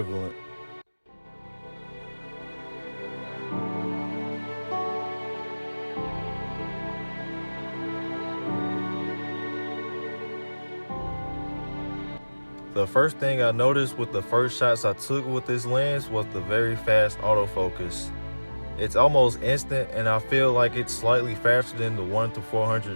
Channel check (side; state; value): both; inverted; correlation -1.00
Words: The first thing I noticed with the first shots I took with this lens was the very fast autofocus. It's almost instant, and I feel like it's slightly faster than the 1 to